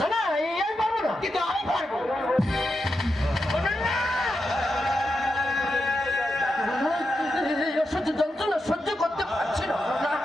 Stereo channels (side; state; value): both; normal; correlation 0.87